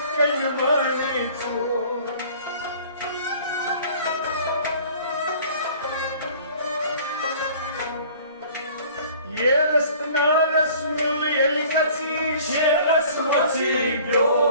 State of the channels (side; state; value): both; inverted; correlation -0.50